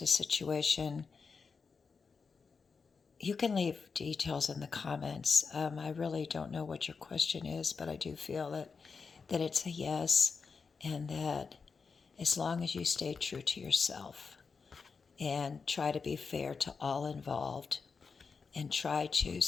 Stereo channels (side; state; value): right; quieter; 5.1 dB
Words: a situation. You can leave details in the comments. I really don't know what your question is, but I do feel that it's a yes, and that as long as you stay true to yourself and try to be fair to all involved and try to